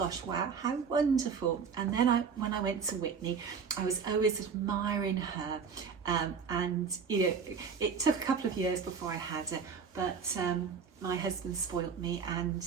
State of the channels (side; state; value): left; quieter; 6.1 dB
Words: wow, how wonderful. And then when I went to Whitney, I was always admiring her, and you know, it took a couple of years before I had her, but my husband spoilt me and